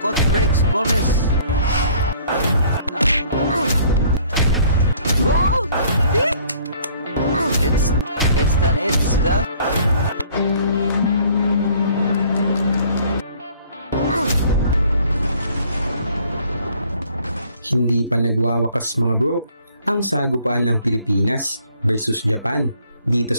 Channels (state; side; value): inverted; both; correlation -0.57